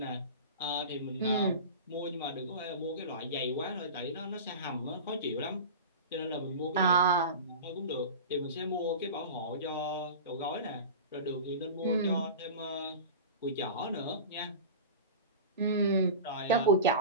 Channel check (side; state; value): both; inverted; correlation -0.31